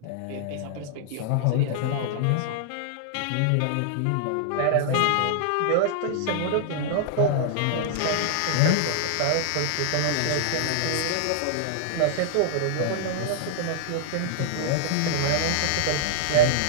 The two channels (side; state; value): both; different; correlation -0.01